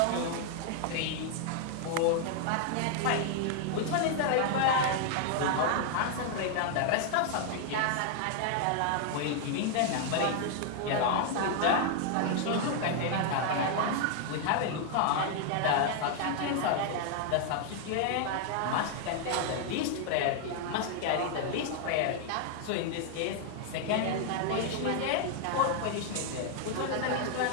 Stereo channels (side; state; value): both; different; correlation 0.00